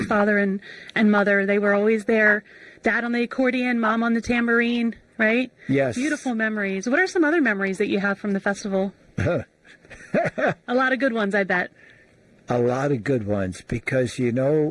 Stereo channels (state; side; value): identical; both; correlation 1.00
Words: father and mother, they were always there. Dad on the accordion, Mom on the tambourine, right? Yes. Beautiful memories. What are some other memories that you have from the festival? A lot of good ones, I bet. A lot of good ones, because, you